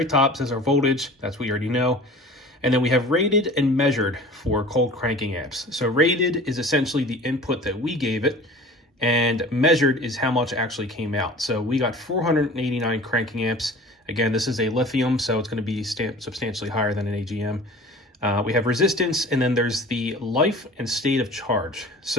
top, it says our voltage, that's what you already know. And then we have rated and measured for cold cranking amps. So rated is essentially the input that we gave it, and measured is how much actually came out. So we got 489 cranking amps. Again, this is a lithium, so it's going to be substantially higher than an AGM. We have resistance, and then there's the life and state of charge.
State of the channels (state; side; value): normal; both; correlation 0.42